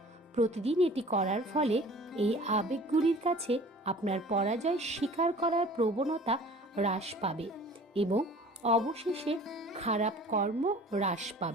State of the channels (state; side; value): normal; both; correlation 0.46